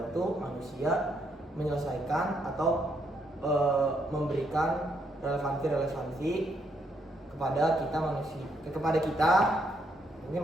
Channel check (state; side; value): normal; both; correlation 0.75